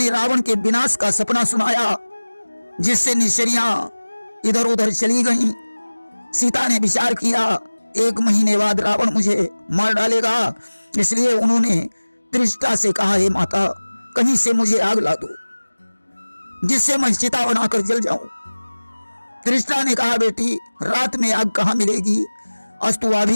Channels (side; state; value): both; inverted; correlation -1.00